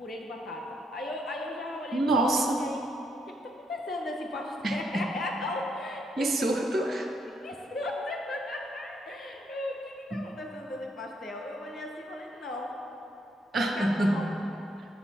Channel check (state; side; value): normal; both; correlation 0.75